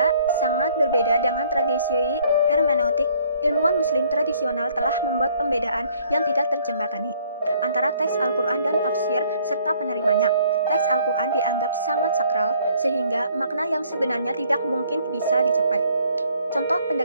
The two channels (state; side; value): inverted; both; correlation -0.62